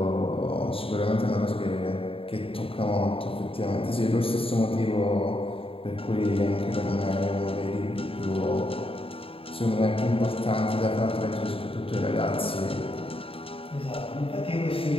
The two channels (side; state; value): right; late; 0.27 ms